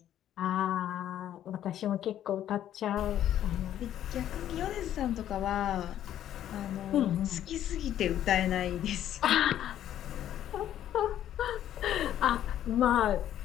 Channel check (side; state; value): right; quieter; 11.4 dB